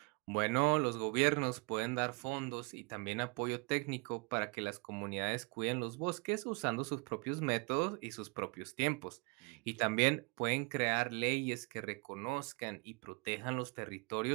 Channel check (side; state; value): left; quieter; 30.9 dB